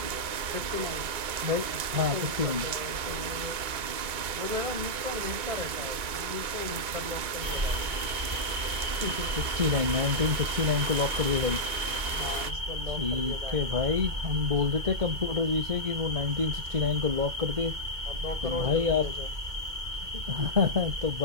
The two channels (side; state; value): left; late; 2.2 ms